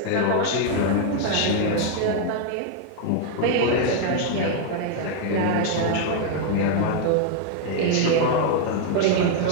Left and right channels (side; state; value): both; different; correlation 0.00